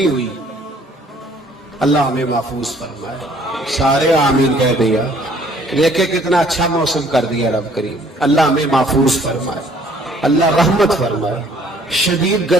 ہوئی۔ اللہ ہمیں محفوظ فرمائے، سارے آمین کہہ دیا، دیکھے کتنا اچھا موسم کر دیا رب کریم، اللہ ہمیں محفوظ فرمائے، اللہ رحمت فرمائے۔ شدید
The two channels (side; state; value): both; normal; correlation 0.59